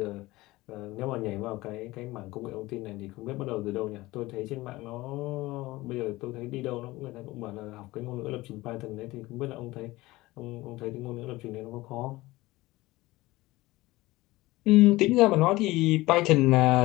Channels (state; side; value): quieter; right; 19.4 dB